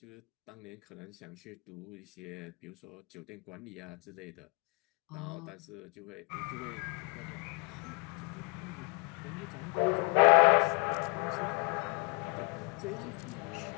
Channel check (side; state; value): right; quieter; 32.5 dB